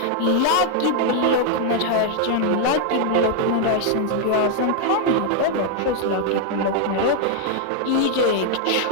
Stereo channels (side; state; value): both; different; correlation 0.00